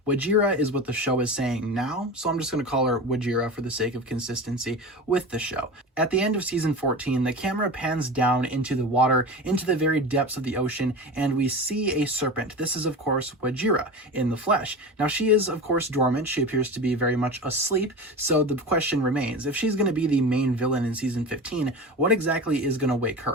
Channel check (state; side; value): normal; both; correlation 0.29